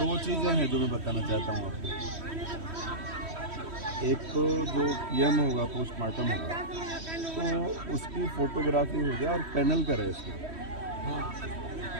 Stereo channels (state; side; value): late; left; 3.1 ms